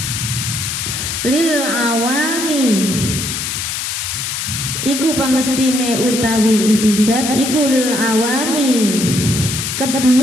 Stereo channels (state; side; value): noise; left; hiss, 3 dB below the sound